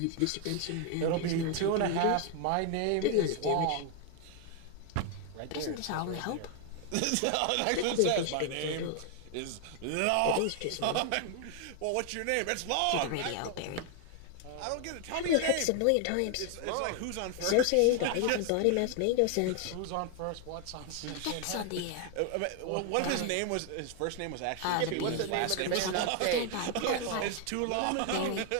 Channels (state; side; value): different; both; correlation 0.00